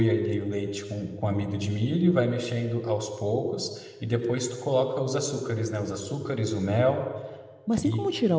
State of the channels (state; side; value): identical; both; correlation 1.00